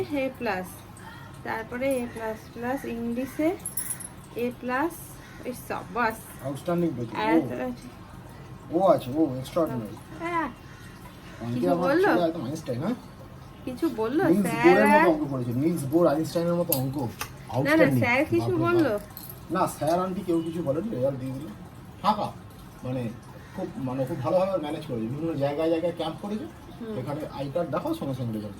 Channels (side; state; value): both; identical; correlation 1.00